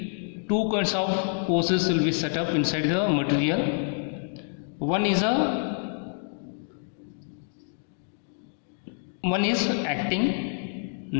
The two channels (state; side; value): silent; right; 60 dB below the other